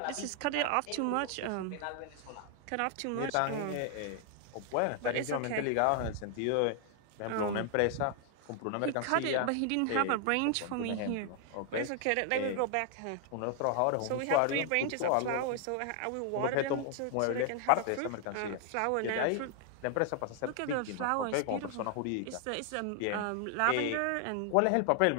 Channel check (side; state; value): both; different; correlation 0.00